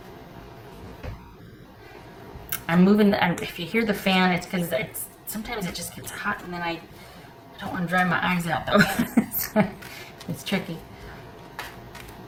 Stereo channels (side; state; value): both; identical; correlation 1.00